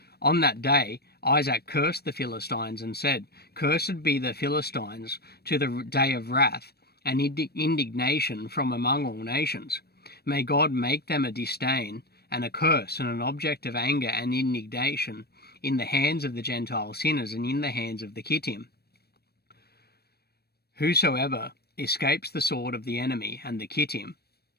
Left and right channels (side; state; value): right; late; 0.47 ms